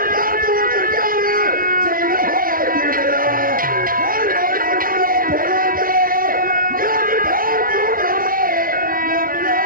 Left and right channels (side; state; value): left; late; 0.41 ms